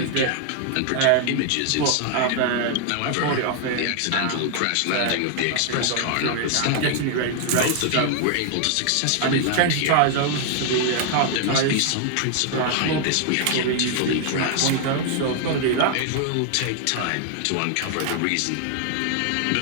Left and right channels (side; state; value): both; different; correlation 0.00